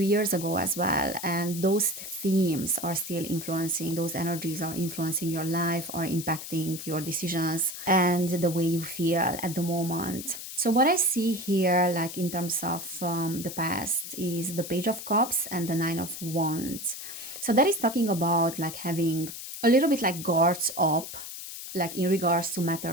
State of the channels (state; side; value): noise; left; hiss, 10 dB below the sound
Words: ago as well. And those themes are still influencing, those energies are influencing your life, are impacting your decisions and the way you feel at the moment. So what I see here, like in terms of the past, is the Page of Cups and the Nine of Wands. So that is talking about like having a little bit like guards up, like in regards to